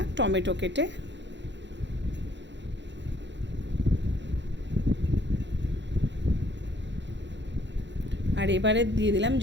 টমেটো কেটে। আর এবারে দিয়ে দিলাম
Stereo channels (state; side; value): late; left; 0.52 ms